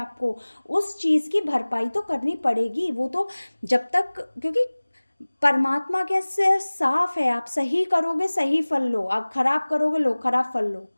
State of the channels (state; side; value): inverted; both; correlation -1.00